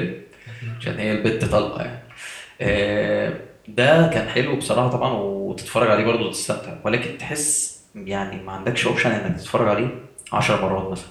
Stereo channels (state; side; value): identical; both; correlation 1.00